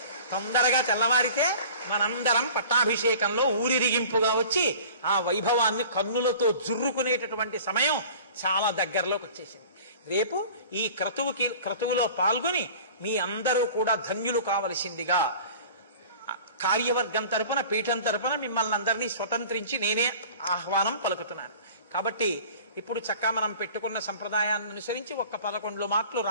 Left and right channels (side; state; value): both; inverted; correlation -0.43